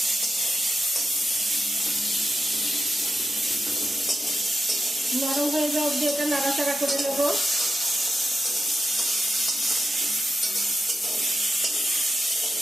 নরম হয়ে যাওয়া অবধি এটা নাড়াচাড়া করে নেব।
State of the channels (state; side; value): normal; both; correlation 0.90